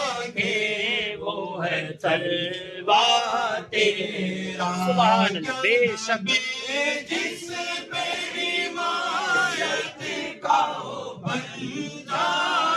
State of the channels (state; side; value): identical; both; correlation 1.00